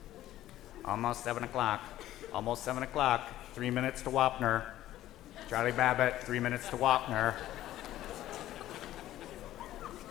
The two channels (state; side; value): quieter; right; 13.9 dB